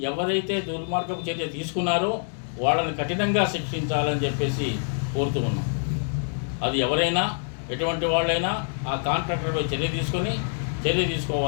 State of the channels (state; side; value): silent; right; digital silence